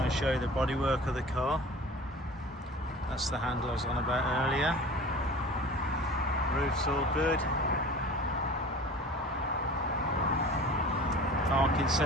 and show you the bodywork of the car. That's the handle I was on about earlier. Roof's all good. Parking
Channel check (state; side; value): normal; both; correlation 0.40